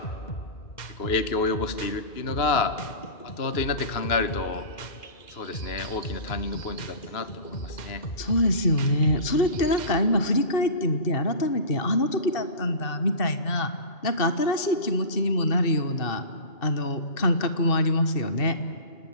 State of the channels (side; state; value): right; late; 2.6 ms